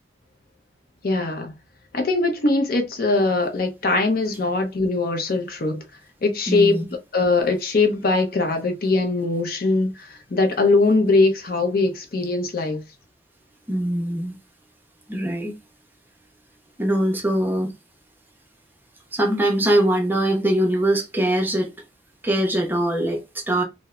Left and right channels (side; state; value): both; normal; correlation 0.61